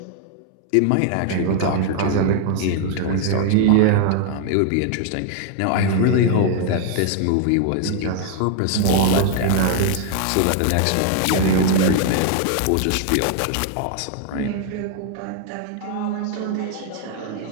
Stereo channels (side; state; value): both; different; correlation 0.00